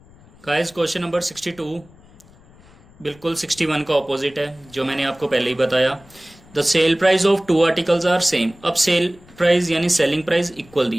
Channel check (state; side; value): noise; left; rumble, 26 dB below the sound